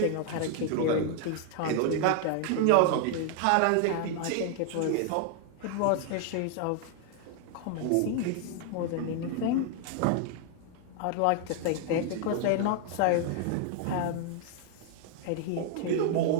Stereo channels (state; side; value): different; both; correlation 0.00